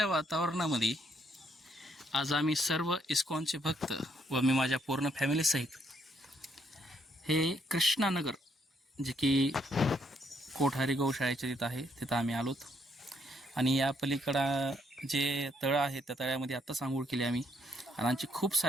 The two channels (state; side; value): normal; both; correlation 0.72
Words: वातावरणामध्ये आज आम्ही सर्व इस्कॉनचे भक्त व मी माझ्या पूर्ण फॅमिलीसहित हे कृष्णानगर जे की कोठारी गौशाळेच्या तिथं आहे तिथं आम्ही आलोत. आणि या पलीकडं जे तळं आहे त्या तळ्यामध्ये आत्ताच आंघोळ केली आम्ही. आणि आमचे खूप